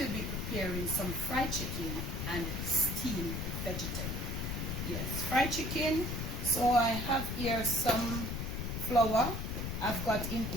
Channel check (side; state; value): left; noise; rumble, 3 dB below the sound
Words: be preparing some fried chicken and steamed vegetable. Yes, fried chicken. So I have here some flour. I've got in